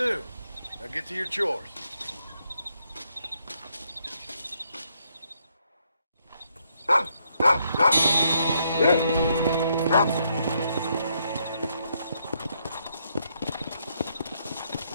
Now get to your chores.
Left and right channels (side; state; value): both; inverted; correlation -0.75